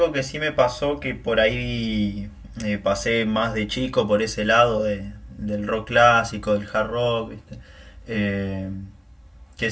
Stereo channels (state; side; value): identical; both; correlation 1.00